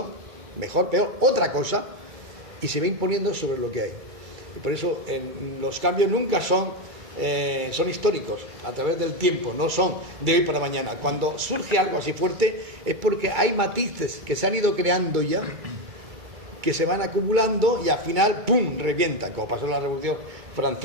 mejor, peor, otra cosa, y se va imponiendo sobre lo que hay. Y por eso los cambios nunca son históricos, a través del tiempo, no son de hoy para mañana. Cuando surge algo así fuerte es porque hay matices que se han ido creando ya, que se van acumulando y al final ¡pum!, revienta, como pasó en la Revolución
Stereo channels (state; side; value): late; left; 2.3 ms